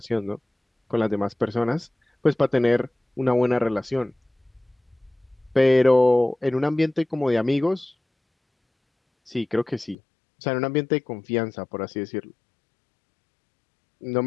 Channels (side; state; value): right; drops out; at 10.0 s